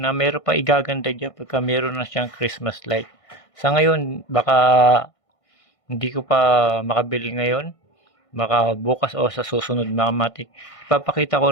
meron pa igaganda dyan pagka meron na siyang Christmas light. Sa ngayon, baka hindi ko pa makabili ngayon, baka bukas o sa susunod mga matik. Ipapakita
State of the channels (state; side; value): late; right; 1.5 ms